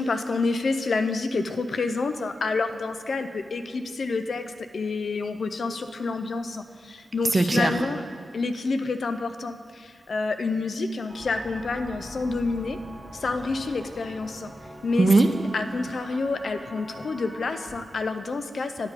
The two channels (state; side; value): normal; both; correlation 0.90